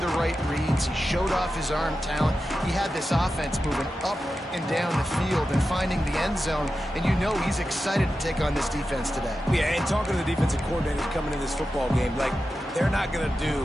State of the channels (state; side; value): normal; both; correlation 0.92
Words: right reads. He showed off his arm talent. He had this offense moving up and down the field and finding the end zone. And you know he's excited to take on this defense today. Yeah, and talking to the defensive coordinators coming into this football game, like, they're not going to do